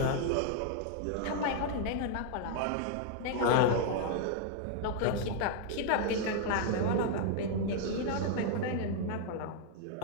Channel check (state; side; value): different; both; correlation 0.00